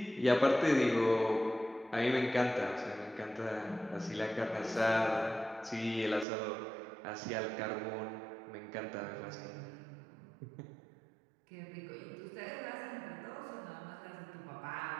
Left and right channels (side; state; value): left; drops out; at 6.2 s